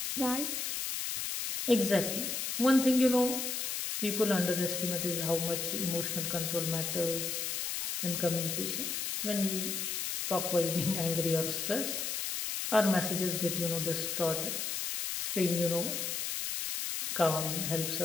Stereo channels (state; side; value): noise; left; hiss, 2 dB below the sound